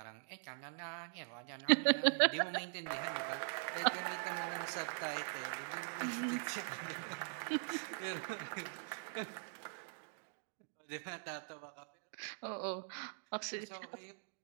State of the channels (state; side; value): silent; left; digital silence